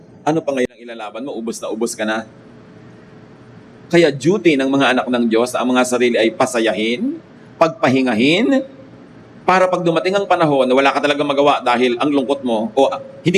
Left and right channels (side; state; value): both; identical; correlation 1.00